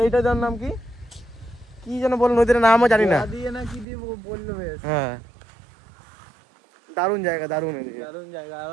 এইটার যার নাম কি কি যেন বল, নদীর নামও জানি না। দিয়ে না কি দিয়ে বললো বেশ। হ্যাঁ, দারুণ জায়গা, দারুণ দারুণ জায়গা। আর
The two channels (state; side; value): drops out; left; at 3.9 s